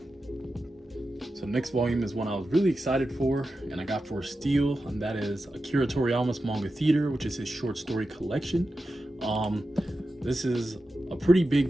So next volume is one I was really excited for, and I got for a steal, and that is Akira Toriyama's Manga Theater, which is his short story collection. This is a pretty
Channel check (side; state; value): both; normal; correlation 0.91